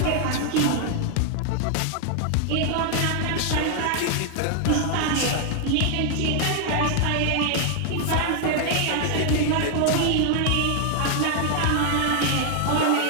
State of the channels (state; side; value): different; both; correlation 0.00